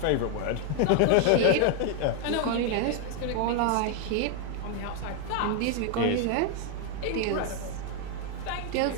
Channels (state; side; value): different; both; correlation 0.01